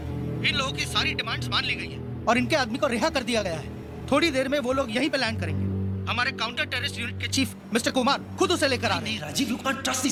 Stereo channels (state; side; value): identical; both; correlation 1.00